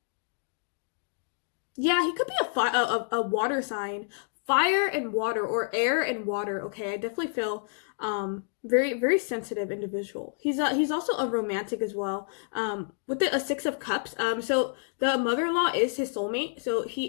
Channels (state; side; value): silent; right; digital silence